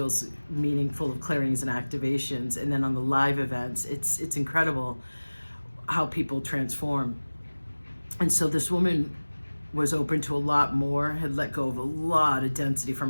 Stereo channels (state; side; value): inverted; both; correlation -1.00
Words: meaningful of clearings and activations. And then on the live events, it's incredible how people transform. And so this woman was open to a lot more, had let go of a lot of density from